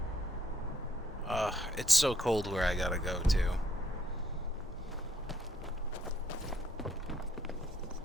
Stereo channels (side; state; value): both; normal; correlation 0.70